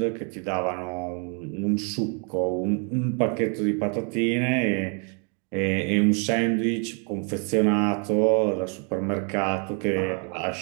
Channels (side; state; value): left; quieter; 38.5 dB